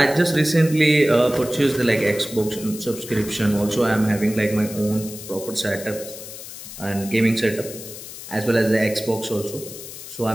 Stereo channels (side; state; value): left; noise; hiss, 12 dB below the sound